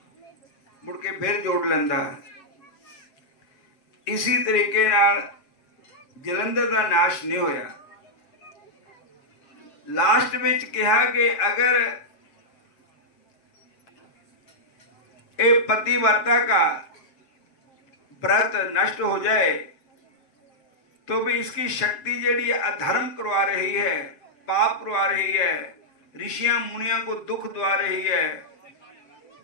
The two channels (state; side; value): late; right; 7.5 ms